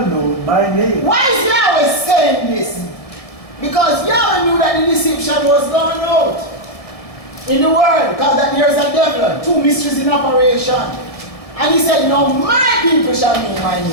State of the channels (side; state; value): right; late; 1.7 ms